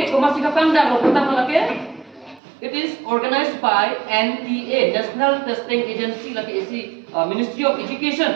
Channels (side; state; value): left; drops out; at 2.4 s